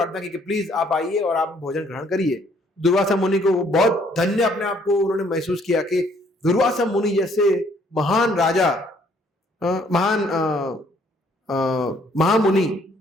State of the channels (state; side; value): normal; both; correlation 0.64